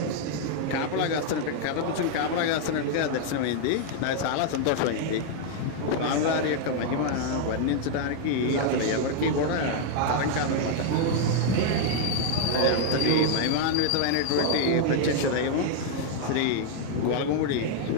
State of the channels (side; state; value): both; different; correlation 0.00